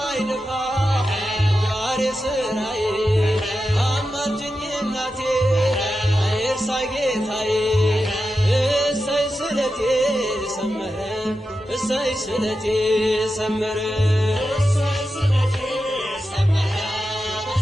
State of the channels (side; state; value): both; normal; correlation 0.90